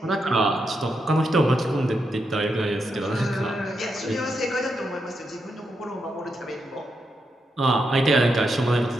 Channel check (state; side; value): normal; both; correlation 0.83